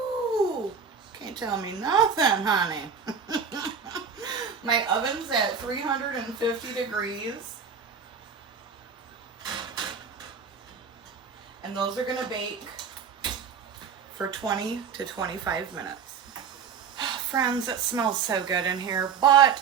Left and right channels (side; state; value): left; quieter; 6.4 dB